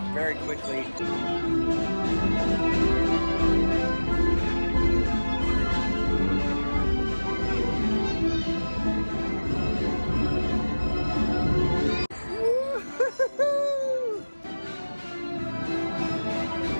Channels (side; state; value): both; inverted; correlation -1.00